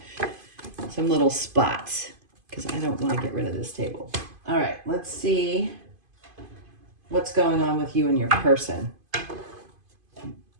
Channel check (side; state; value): left; late; 2.5 ms